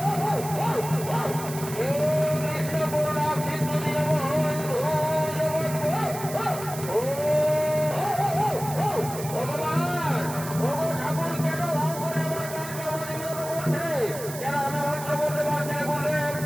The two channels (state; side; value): noise; right; hiss, 11 dB below the sound